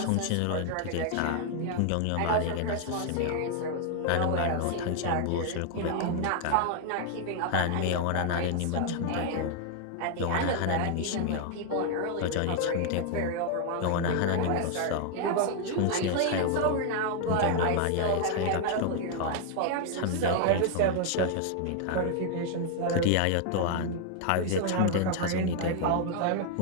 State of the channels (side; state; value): both; different; correlation 0.00